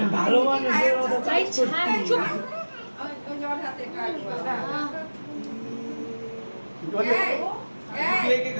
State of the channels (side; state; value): both; inverted; correlation -1.00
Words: ভালো মানুষের মতো ভাই ছাড় চুপ বিয়াকে